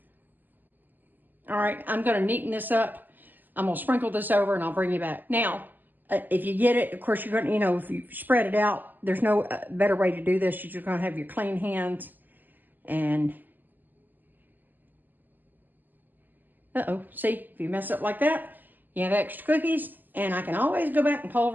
All right, I'm going to neaten this up. I'm going to sprinkle this over, and I'll bring you back. Now, if you get it, of course, you're going to, if you spread it out, there's no better way to do this. You're just going to have your clean hands. And, see, if you mess up like that, you have extra cookies, and I can always go back and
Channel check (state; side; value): late; left; 0.087 ms